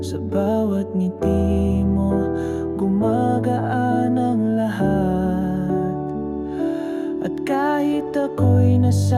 sa bawat ngiti mo gumagaan ang lahat. At kahit ako'y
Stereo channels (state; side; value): identical; both; correlation 1.00